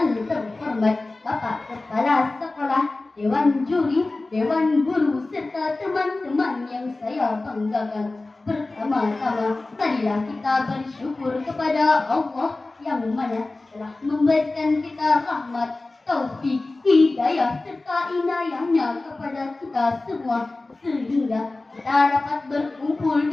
terhormat Bapak Kepala Sekolah, Dewan Juri, Dewan Guru, serta teman-teman yang saya banggakan. Pertama-tama, marilah kita bersyukur kepada Allah yang mana telah memberikan kita rahmat, taufik, hidayah, serta inayahnya kepada kita semua, sehingga kita dapat berkumpul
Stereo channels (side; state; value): right; quieter; 3.1 dB